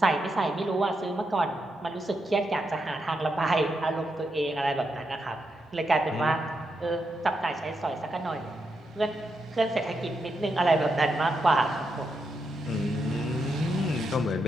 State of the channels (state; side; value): normal; both; correlation 0.83